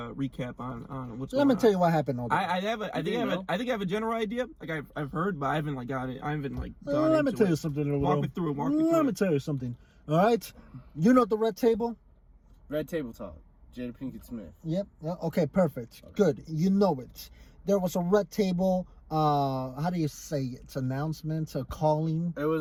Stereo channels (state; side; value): identical; both; correlation 1.00